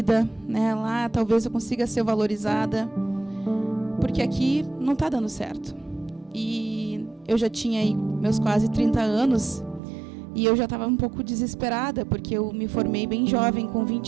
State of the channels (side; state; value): left; drops out; at 9.8 s